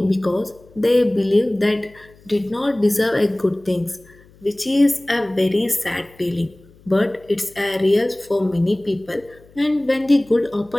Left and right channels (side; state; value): left; noise; hum, 27 dB below the sound